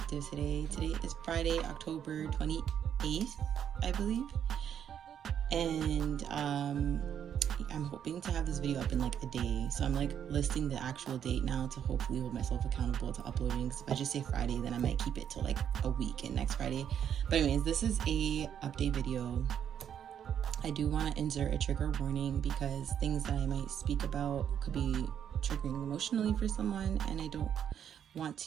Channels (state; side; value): quieter; left; 9.0 dB